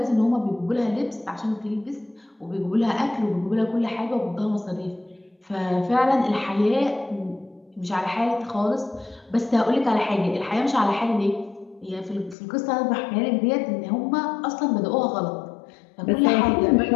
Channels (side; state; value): right; drops out; at 12.4 s